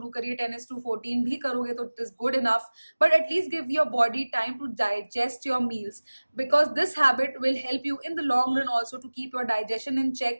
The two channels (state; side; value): inverted; both; correlation -1.00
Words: करिए, 10:14 भी करोगे तो it is good enough. But at least give your body time to digest your meals, because this habit will help you in the long run also to keep your digestion in